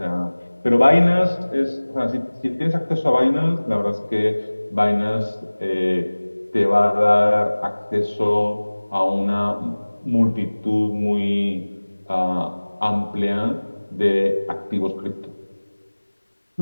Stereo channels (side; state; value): both; inverted; correlation -1.00